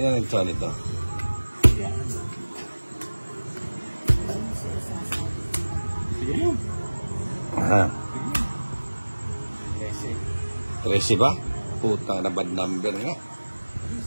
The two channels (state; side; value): inverted; both; correlation -1.00